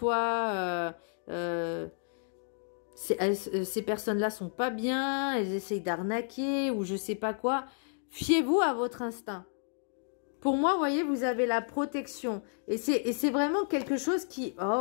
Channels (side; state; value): right; silent; 57 dB below the other